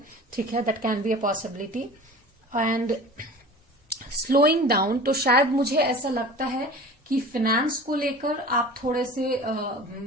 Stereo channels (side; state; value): both; normal; correlation 0.39